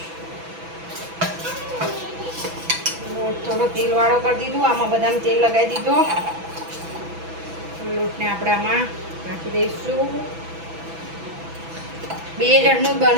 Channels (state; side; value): late; left; 6.0 ms